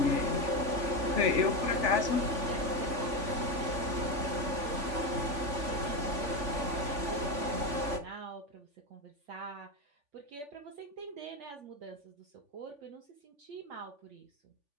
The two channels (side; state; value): left; late; 3.5 ms